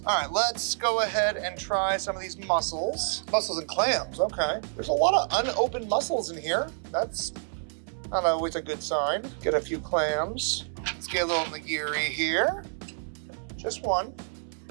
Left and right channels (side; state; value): left; silent; 59 dB below the other